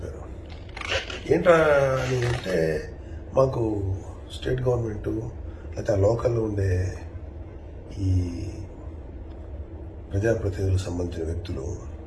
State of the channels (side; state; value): both; identical; correlation 1.00